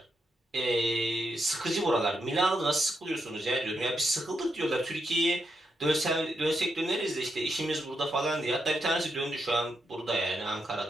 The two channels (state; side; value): normal; both; correlation 0.82